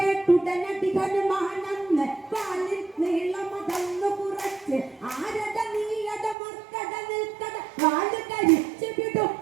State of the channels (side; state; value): left; drops out; at 6.4 s